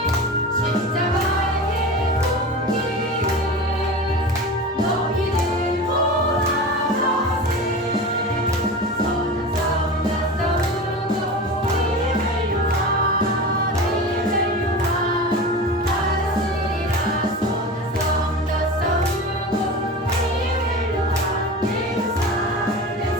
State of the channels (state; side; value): normal; both; correlation 0.31